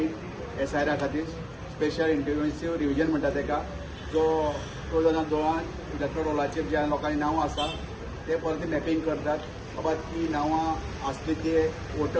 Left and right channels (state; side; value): identical; both; correlation 1.00